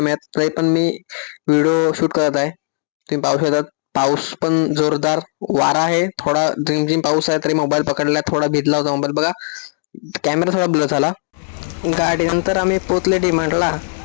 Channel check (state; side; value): silent; right; digital silence